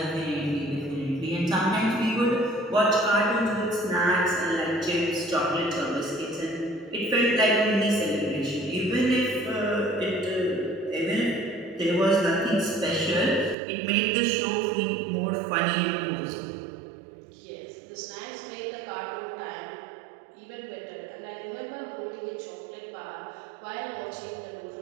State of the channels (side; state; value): left; drops out; at 13.6 s